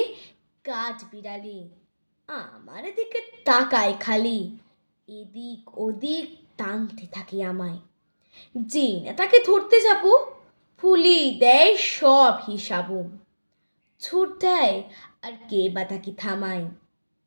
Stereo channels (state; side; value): inverted; both; correlation -1.00